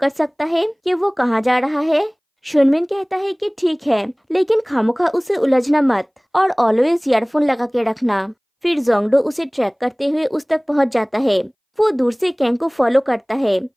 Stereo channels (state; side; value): identical; both; correlation 1.00